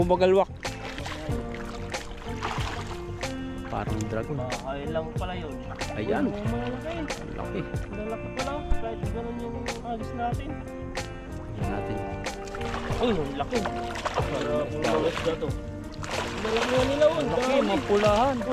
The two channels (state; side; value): identical; both; correlation 1.00